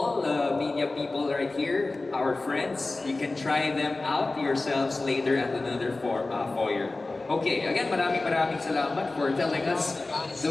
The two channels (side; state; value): right; quieter; 3.2 dB